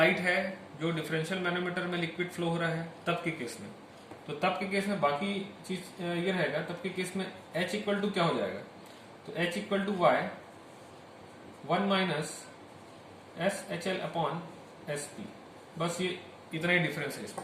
है, जो डिफरेंशियल मैनोमीटर में लिक्विड फ्लो हो रहा है, तब के केस में, तो तब के केस में बाकी चीज ये रहेगा। तब के केस में H इक्वल टू क्या हो जाएगा, तो H equal to y 1 minus S H L upon S P, बस ये इतना ही डिफरेंस है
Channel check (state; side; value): identical; both; correlation 1.00